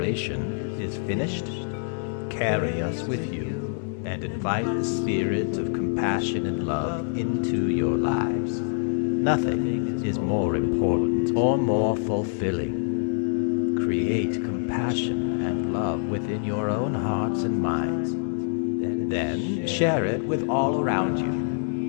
is finished. Carry us with you and invite the spirit of compassion and love into your lives. Nothing is more important or more fulfilling. Create compassion and love within your own hearts and minds. Then share it with all around you.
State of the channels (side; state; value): right; silent; digital silence